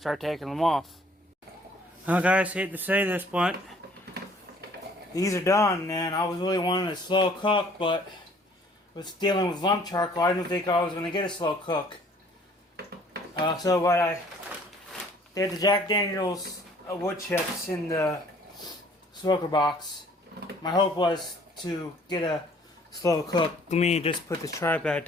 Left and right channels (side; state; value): both; normal; correlation 0.57